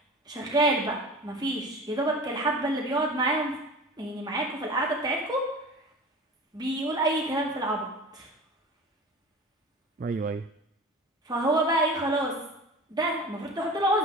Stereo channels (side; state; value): both; normal; correlation 0.36